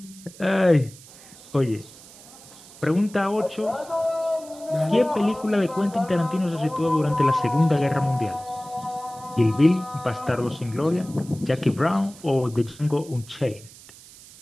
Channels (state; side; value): noise; right; hiss, 20 dB below the sound